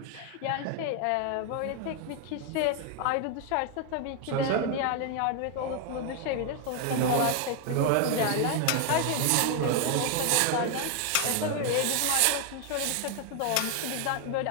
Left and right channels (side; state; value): both; different; correlation 0.01